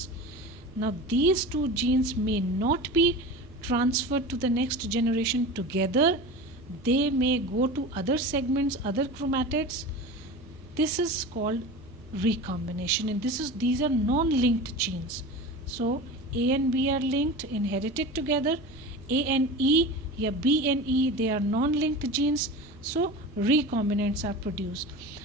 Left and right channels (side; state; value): right; noise; rumble, 22 dB below the sound